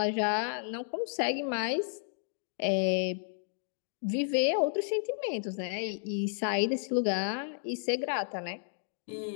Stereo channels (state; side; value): silent; right; digital silence